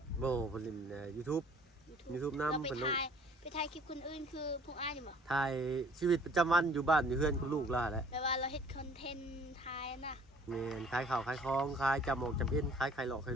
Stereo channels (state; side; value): normal; both; correlation 0.54